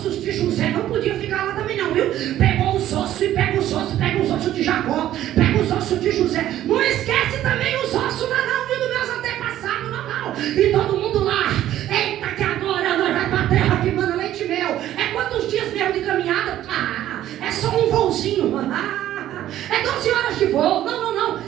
de José. Não podia ficar lá também não, viu? Pegou os ossos e pega os ossos de Jacó, pega os ossos de José. Não esquece também os ossos não, viu, dos meus antepassados, não. E todo mundo lá: eita, que agora nós vamos para a terra que manda leite e mel. É quantos dias mesmo de caminhada? É só um voozinho. É 12 horas de voo. Não.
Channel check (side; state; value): left; quieter; 12.7 dB